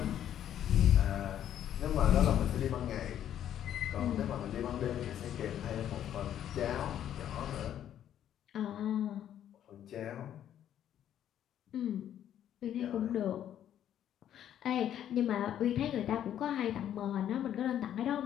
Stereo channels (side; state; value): right; quieter; 10.6 dB